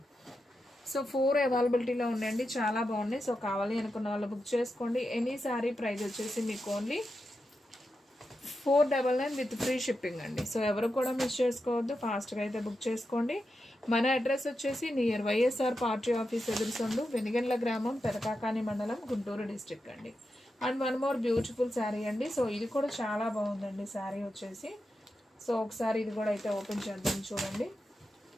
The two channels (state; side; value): normal; both; correlation 0.88